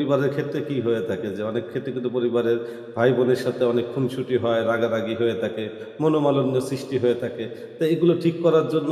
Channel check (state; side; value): identical; both; correlation 1.00